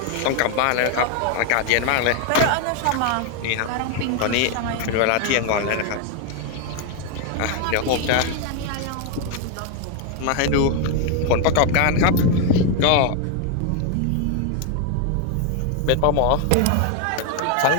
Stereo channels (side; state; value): both; different; correlation 0.01